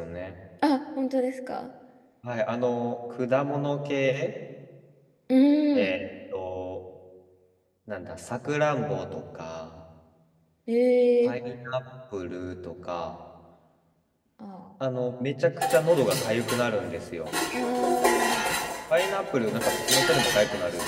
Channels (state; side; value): identical; both; correlation 1.00